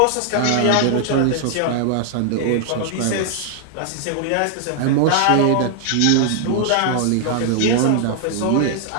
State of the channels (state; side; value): different; both; correlation 0.00